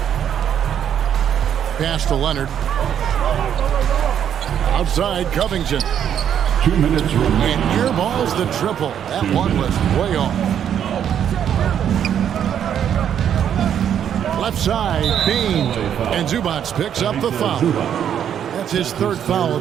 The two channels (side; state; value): left; quieter; 9.2 dB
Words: Pass to Leonard. Outside Covington. 2 minutes remaining. And airballs the triple. That one was way off. Left side, Bean. And Zubac picks up the foul. That's his 3rd foul of